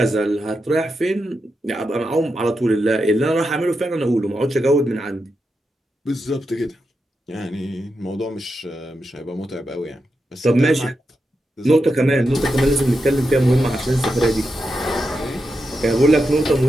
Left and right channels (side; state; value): both; normal; correlation 0.87